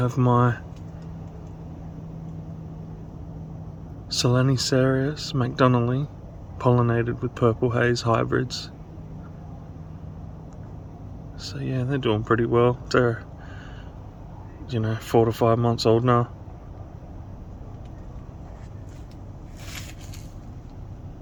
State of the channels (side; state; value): both; identical; correlation 1.00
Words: my Solenicarius McDonnelly pollinated with purple haze hybrids. So yeah, they're doing pretty well. They're, 4 to 5 months old now.